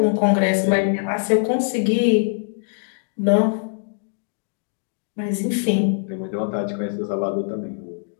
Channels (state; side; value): silent; right; digital silence